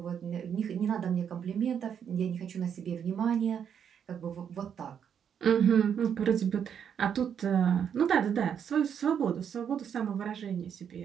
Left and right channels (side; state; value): left; quieter; 8.1 dB